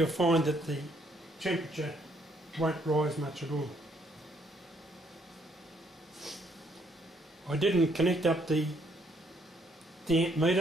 find that the temperature won't rise much at all. I didn't connect up the amp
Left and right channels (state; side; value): normal; both; correlation 0.69